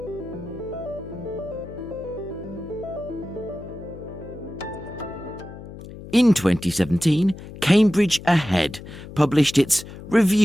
In 2017, Cambridge Ahead published its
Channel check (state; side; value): noise; left; hum, 14 dB below the sound